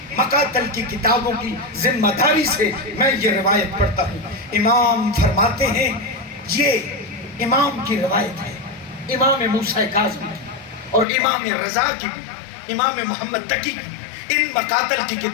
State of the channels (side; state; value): right; drops out; at 11.1 s